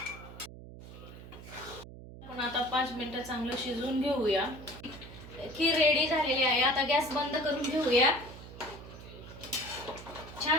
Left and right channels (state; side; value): noise; right; hum, 15 dB below the sound